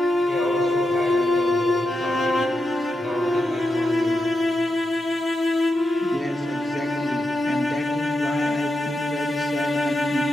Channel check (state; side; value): normal; both; correlation 0.87